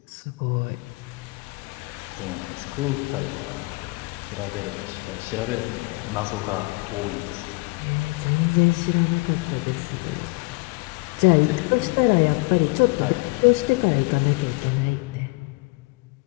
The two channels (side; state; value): right; quieter; 27.6 dB